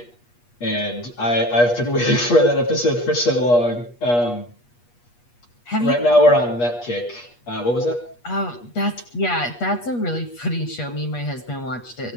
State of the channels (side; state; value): right; late; 8.3 ms